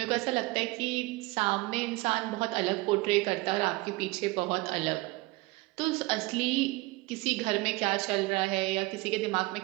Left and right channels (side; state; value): left; quieter; 22.0 dB